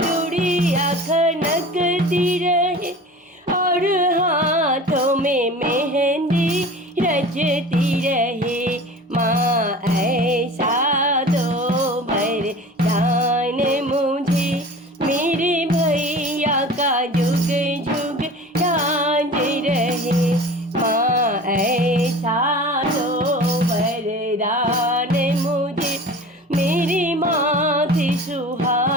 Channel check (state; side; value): normal; both; correlation 0.39